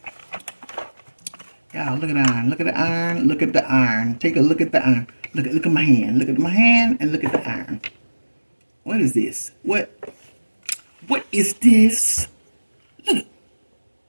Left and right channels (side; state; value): both; inverted; correlation -1.00